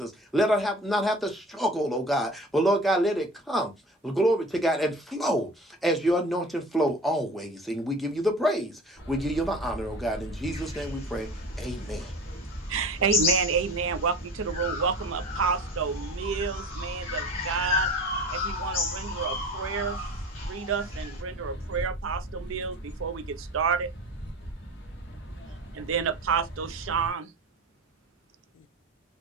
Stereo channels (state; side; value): normal; both; correlation 0.38